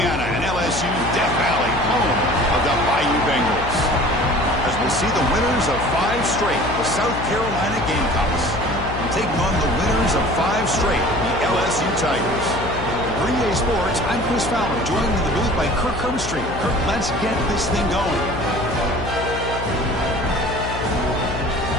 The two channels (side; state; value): left; noise; hum, 8 dB below the sound